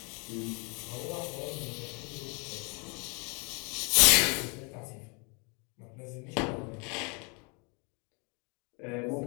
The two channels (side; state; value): right; quieter; 33.1 dB